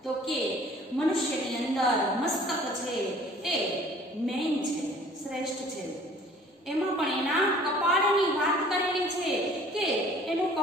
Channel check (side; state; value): both; normal; correlation 0.52